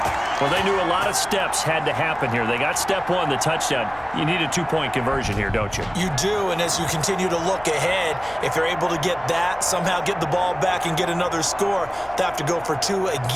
Well, they knew a lot of steps had to happen here. They got step 1, the touchdown. You need a 2-point conversion here, don't you? You do, and as you continue to look ahead, if they're able to get that, somehow get the ball back and get another score, they have to go for 2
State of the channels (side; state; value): left; noise; hum, 22 dB below the sound